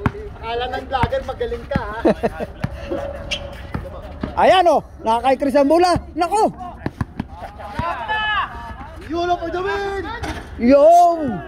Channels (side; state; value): both; identical; correlation 1.00